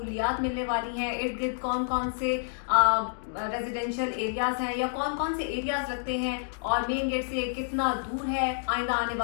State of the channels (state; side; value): silent; right; digital silence